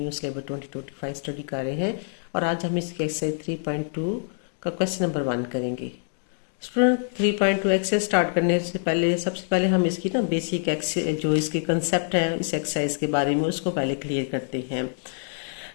syllabus 2025 study कर रहे हैं और आज हम इसके एक्सरसाइज 3.2 का क्वेश्चन नंबर 1 करेंगे। स्टूडेंट 3.2 एक्सरसाइज स्टार्ट करने से पहले सबसे पहले हम इसकी बेसिक जो इसके कंसेप्ट है इस एक्सरसाइज के बारे में उसको पहले क्लियर करते हैं।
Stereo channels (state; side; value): silent; right; digital silence